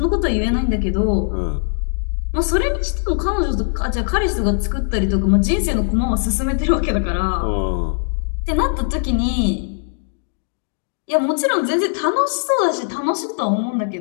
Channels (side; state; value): right; silent; digital silence